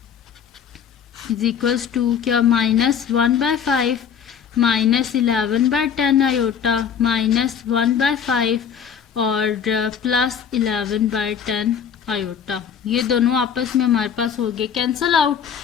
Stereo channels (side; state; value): right; quieter; 7.6 dB